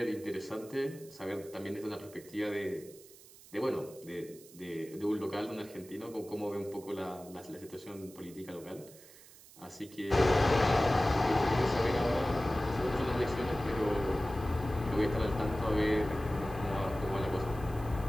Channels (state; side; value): noise; right; hiss, 21 dB below the sound